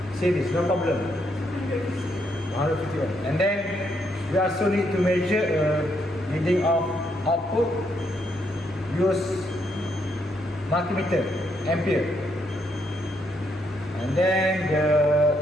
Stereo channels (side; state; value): both; normal; correlation 0.75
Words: no problem. 150 ohm, and then we also need to measure reading of output, use multimeter, ampere, and then the